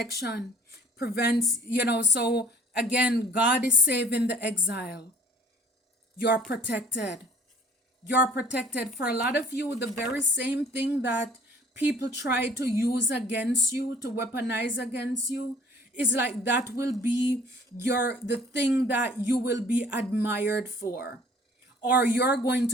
prevents, so again, God is saving the exile. You're protected. You're protected. For a lot of you, the very same thing that people try to use against you, to weaponize against you, is like that will be the thing that you will be admired for, or you're going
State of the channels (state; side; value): normal; both; correlation 0.54